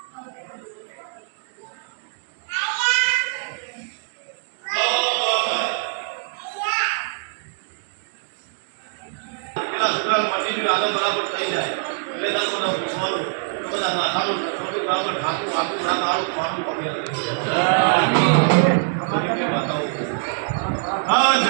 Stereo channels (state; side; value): silent; left; digital silence